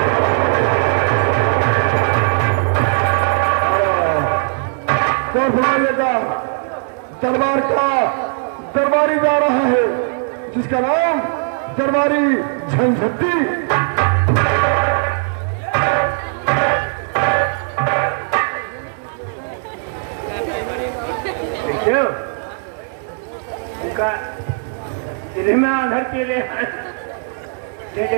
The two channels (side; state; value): left; silent; 56 dB below the other